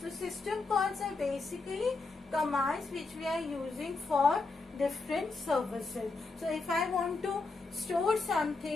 So system calls are basically commands which we are using for different services. So if I want to store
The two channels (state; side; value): quieter; right; 3.8 dB